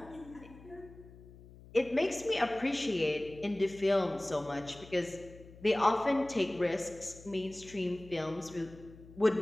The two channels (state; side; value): noise; left; hum, 20 dB below the sound